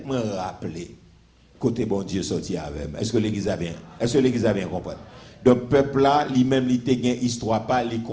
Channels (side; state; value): both; identical; correlation 1.00